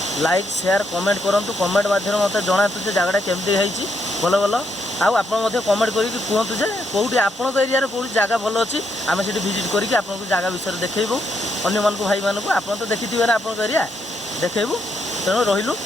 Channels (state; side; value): normal; both; correlation 0.77